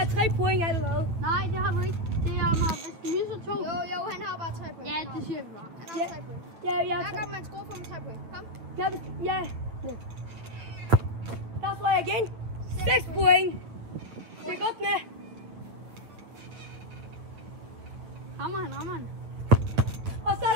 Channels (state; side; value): late; left; 8.9 ms